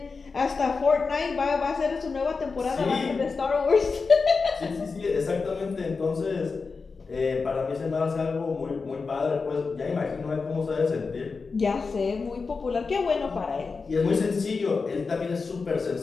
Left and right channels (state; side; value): quieter; right; 4.6 dB